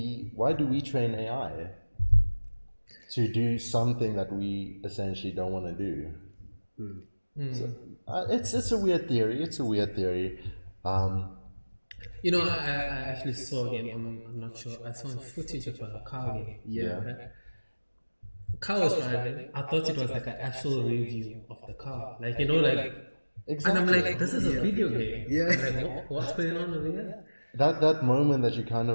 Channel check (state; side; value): inverted; both; correlation -1.00